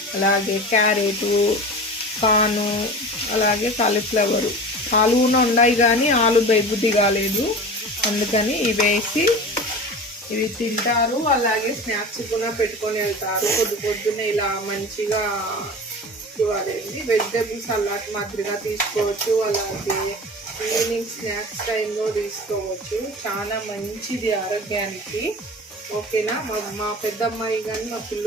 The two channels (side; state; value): both; normal; correlation 0.34